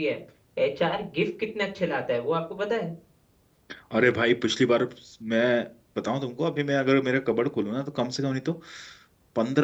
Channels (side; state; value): both; identical; correlation 1.00